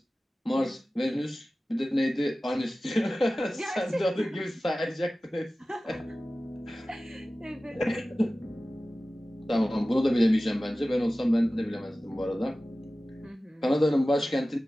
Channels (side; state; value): both; normal; correlation 0.96